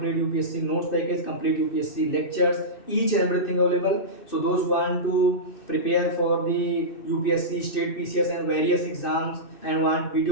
UPSC notes package, complete UPSC lectures, each and everything available. So those who want to prepare for the UPSC, state PCS and various exams and want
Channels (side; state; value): right; late; 2.6 ms